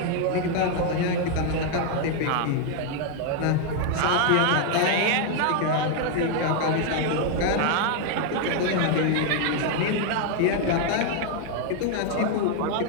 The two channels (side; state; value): both; different; correlation 0.00